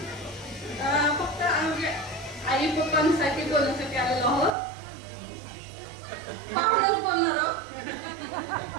फक्त आई पप्पांसाठी बोलण्यासाठी आलेलो आहोत. पाहुणच बोलणार आहोत.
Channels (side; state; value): left; drops out; at 4.5 s